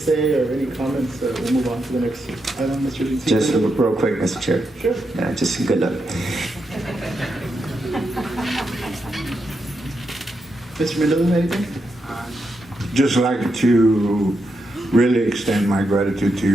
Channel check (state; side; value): normal; both; correlation 0.84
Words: or any comments, we'll move on to the next item, Mr. Zeke. Just real quick, Mr. Chair. Sure. Yeah, just good luck. Mr. Mendoza, anything? Just like to really extend my gratitude to